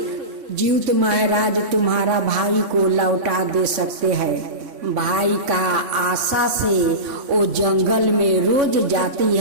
जीवित महाराज तुम्हारा भाई को लौटा दे सकते हैं। भाई का आशा से वो जंगल में रोज जाती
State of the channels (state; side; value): late; left; 3.5 ms